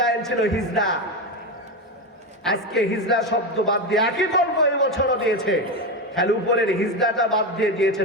ছিল হিজড়া। আজকে হিজড়া শব্দ বাদ দিয়ে একই গল্প এই বছরও দিয়েছে, খালি উপরের হিজড়াটা বাদ দিয়ে দিয়েছে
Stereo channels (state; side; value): normal; both; correlation 0.15